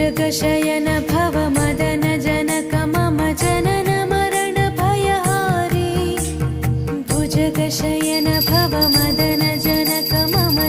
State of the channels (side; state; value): both; identical; correlation 1.00